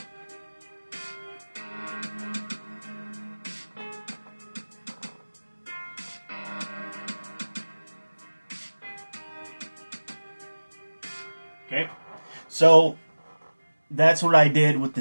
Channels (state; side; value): inverted; both; correlation -1.00